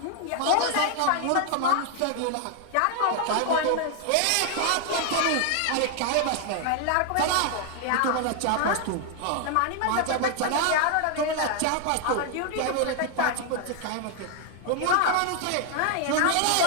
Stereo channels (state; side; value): different; both; correlation 0.00